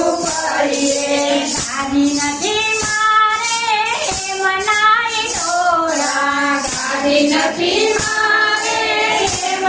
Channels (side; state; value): both; identical; correlation 1.00